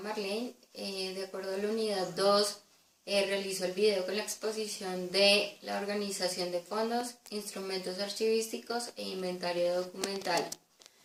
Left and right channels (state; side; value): identical; both; correlation 1.00